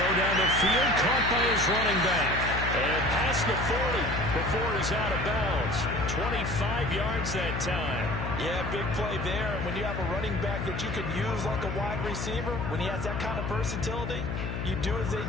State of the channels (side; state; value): left; noise; hum, 4 dB below the sound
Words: down the field, caught by his running back. And past the 40 before he's out of bounds. 25 yards that time. Yeah, big play there. And when you have a running back that you can use like a wide receiver, when he has that kind of versatility, you do as they